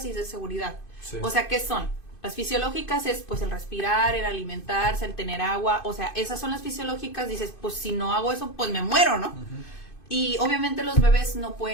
y de seguridad. Sí. O sea, ¿qué son? Las fisiológicas es pues el respirar, el alimentarse, el tener agua, o sea, esas son las fisiológicas. Dices, pues si no hago eso, pues me muero, ¿no? Y obviamente los bebés no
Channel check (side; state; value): right; late; 2.5 ms